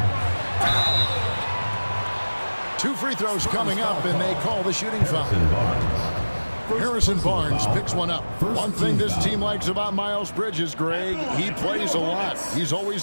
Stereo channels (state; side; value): inverted; both; correlation -1.00